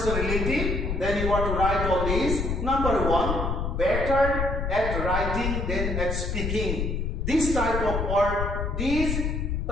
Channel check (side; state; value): left; noise; rumble, 1 dB below the sound